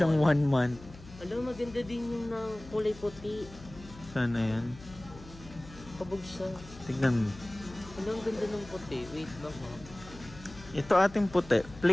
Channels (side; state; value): left; noise; hum, 18 dB below the sound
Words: small. 1 month. Alam, maganda din yung ng kulay puti. Sana yan. Kabog siya. Tignan mo. Alam, ang ganda ng puti. Wait lang ha. Ito ating puti.